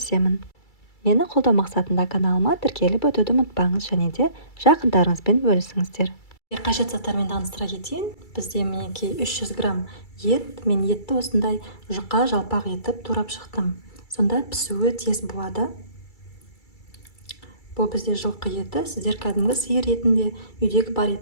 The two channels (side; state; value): right; late; 2.3 ms